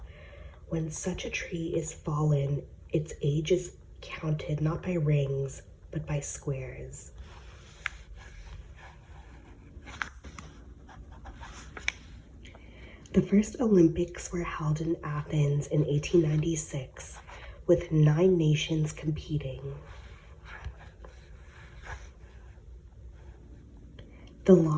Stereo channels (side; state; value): both; identical; correlation 1.00